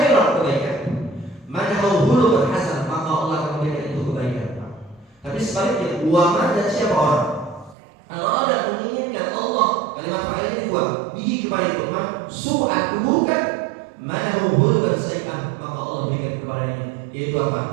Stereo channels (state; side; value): drops out; left; at 7.8 s